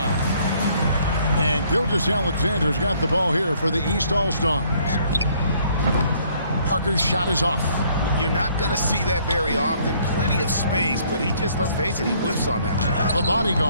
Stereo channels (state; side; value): inverted; both; correlation -0.63